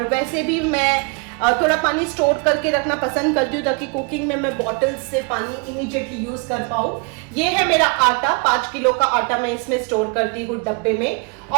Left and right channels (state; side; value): quieter; left; 33.4 dB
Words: वैसे भी मैं थोड़ा पानी स्टोर करके रखना पसंद करती हूँ ताकि कुकिंग में मैं बॉटल्स से पानी इमीडिएटली यूज कर पाऊँ। ये है मेरा आटा, 5 किलो का आटा मैं इसमें स्टोर करती हूँ डब्बे में।